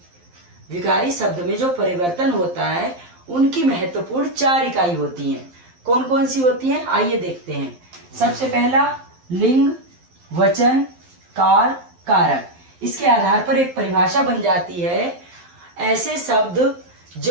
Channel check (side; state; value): left; late; 11 ms